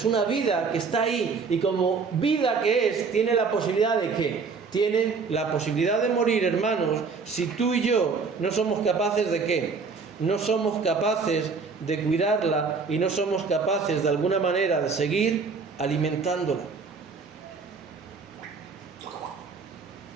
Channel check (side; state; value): left; quieter; 4.9 dB